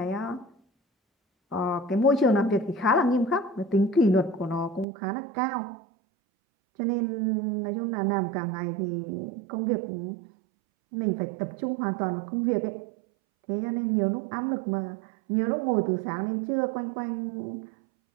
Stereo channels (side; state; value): left; drops out; at 4.9 s